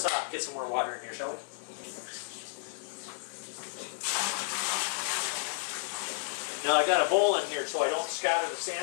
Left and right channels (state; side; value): silent; right; digital silence